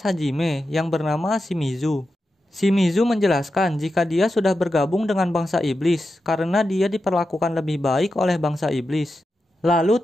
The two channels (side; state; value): both; normal; correlation 0.90